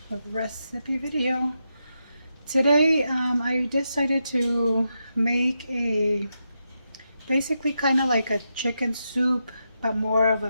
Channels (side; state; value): both; inverted; correlation -0.86